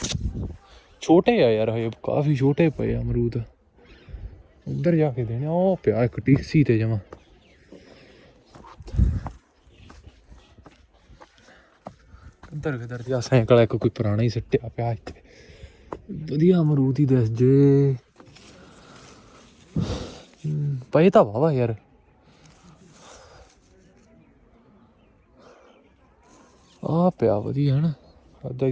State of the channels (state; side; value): identical; both; correlation 1.00